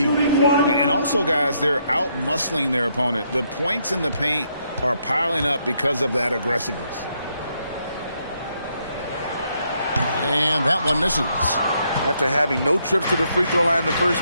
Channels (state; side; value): inverted; both; correlation -0.75